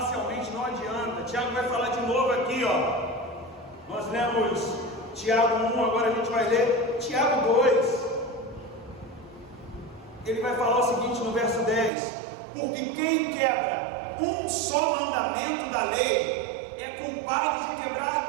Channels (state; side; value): drops out; left; at 11.9 s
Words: não adianta. Tiago vai falar de novo aqui, ó. Nós lemos Tiago 1, agora a gente vai ler Tiago 2. Ele vai falar o seguinte no verso 10: porque quem quebra um só mandamento da lei é culpado de